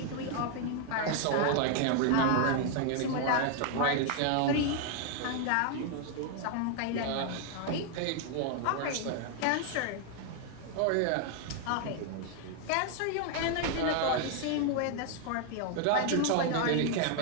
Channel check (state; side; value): different; both; correlation 0.00